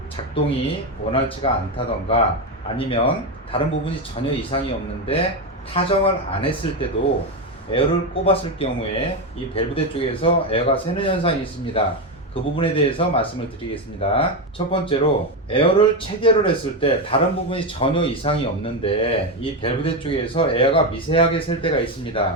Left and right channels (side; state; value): both; normal; correlation 0.11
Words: 작동이 원활치가 않다던가 아니면 다른 부분이 전혀 이상이 없는데 타정을 안 했을 때도 에어를 꼽았을 경우에 이 밸브드 쪽에서 에어가 새는 현상이 있습니다. 그 부분에 대해서 말씀을 드리겠습니다. 첫 번째로 에어를 체결을 했을 때 다른 부분이 전혀 이상이 없는데 이 밸브드 쪽에서 에어가 미세하게 셀 때가